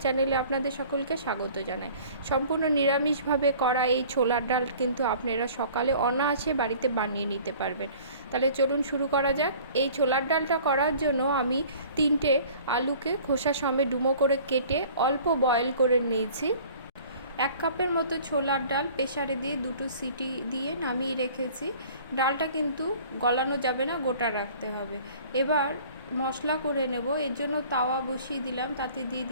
চ্যানেলে আপনাদের সকলকে স্বাগত জানাই। সম্পূর্ণ নিরামিষভাবে করা এই ছোলার ডাল কিন্তু আপনারা সকালে অনায়াসে বাড়িতে বানিয়ে নিতে পারবেন। তাহলে চলুন শুরু করা যাক। এই ছোলার ডালটা করার জন্য আমি 3টে আলুকে খোসা সমেত ডুমো করে কেটে অল্প বয়েল করে নিয়েছি। 1 কাপের মতো ছোলার ডাল প্রেসারে দিয়ে 2টো সিটি দিয়ে নামিয়ে রেখেছি। ডালটা কিন্তু গলানো যাবে না, গোটা রাখতে হবে। এবার মশলা করে নেব। এর জন্য তাওয়া বসিয়ে দিলাম, তাতে দিয়ে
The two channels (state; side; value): inverted; both; correlation -0.49